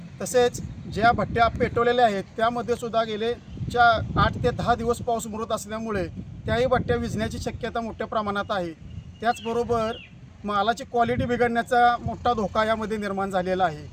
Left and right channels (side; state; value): both; identical; correlation 1.00